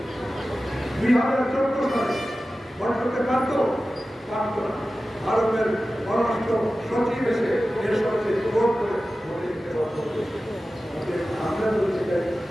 2014 সালে ভোট করতে পারত পারত না। ভারতের পররাষ্ট্র সচিব এসে এর সাথে ভোট করে ভোটে দিতে বাধ্য করেছে। আমরা বলতে চাই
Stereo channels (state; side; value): normal; both; correlation 0.95